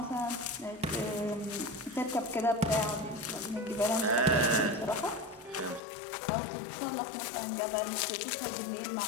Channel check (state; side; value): drops out; right; at 5.8 s